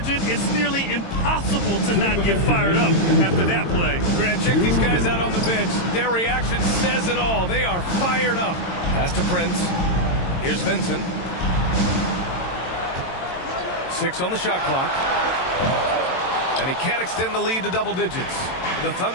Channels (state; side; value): late; right; 22 ms